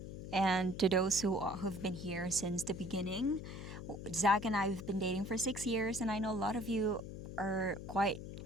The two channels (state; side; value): noise; left; hum, 9 dB below the sound